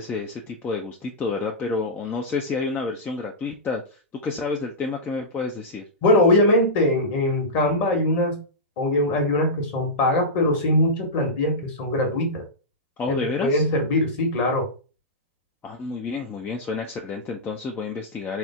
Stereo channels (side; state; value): both; normal; correlation -0.13